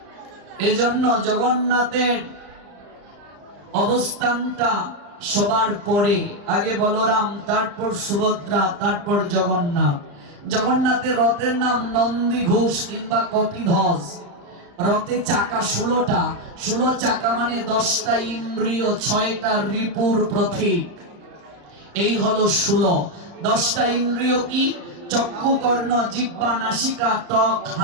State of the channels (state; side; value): late; left; 34 ms